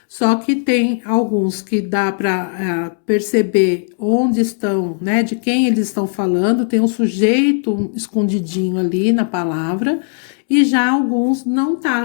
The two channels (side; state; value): right; silent; digital silence